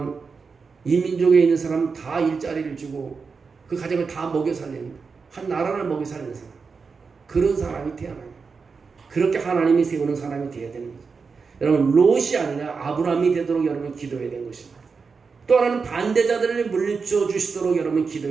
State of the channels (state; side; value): quieter; left; 5.1 dB